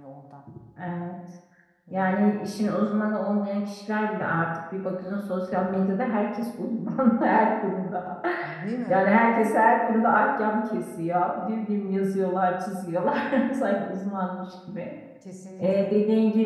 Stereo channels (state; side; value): identical; both; correlation 1.00